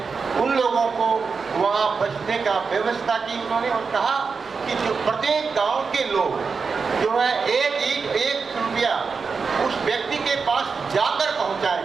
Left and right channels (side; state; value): left; quieter; 5.1 dB